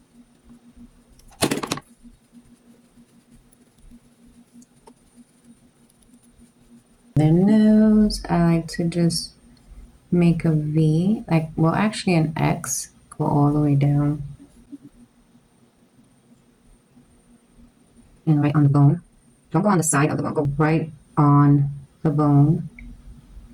Their nose, I like to just make a V, like, well, actually an X, go all the way down. And right on the bone. Don't go on the side of the bone, go right on the bone.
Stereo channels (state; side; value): identical; both; correlation 1.00